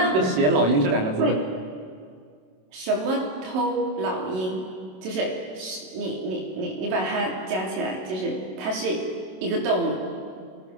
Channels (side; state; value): left; late; 27 ms